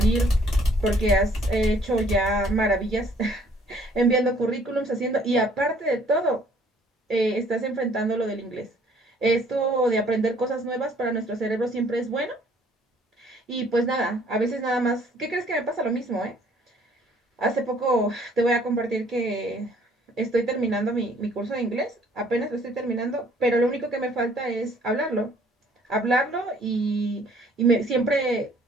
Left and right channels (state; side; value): normal; both; correlation 0.59